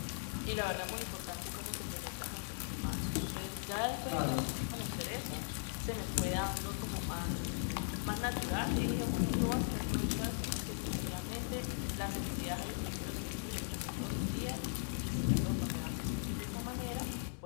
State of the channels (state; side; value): silent; right; digital silence